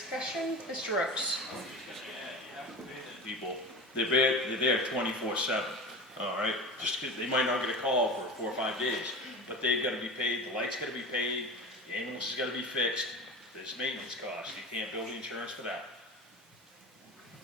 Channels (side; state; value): both; normal; correlation 0.31